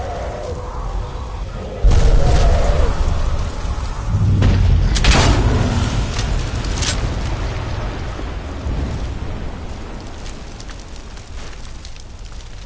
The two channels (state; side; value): identical; both; correlation 1.00